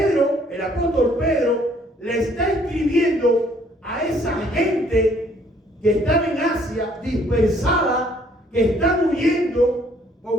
el apóstol Pedro, le está escribiendo a esa gente que están en Asia, dispersada, que están huyendo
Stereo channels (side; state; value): both; normal; correlation 0.62